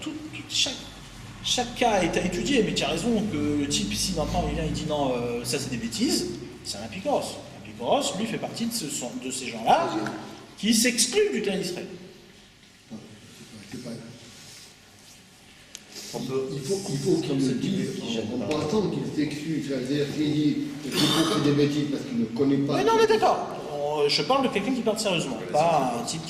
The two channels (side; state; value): both; identical; correlation 1.00